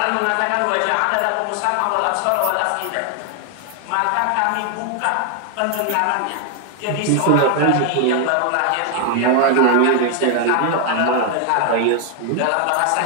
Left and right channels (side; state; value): both; different; correlation 0.00